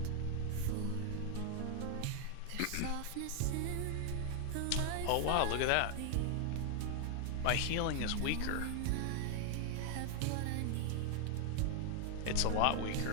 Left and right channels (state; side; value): different; both; correlation 0.00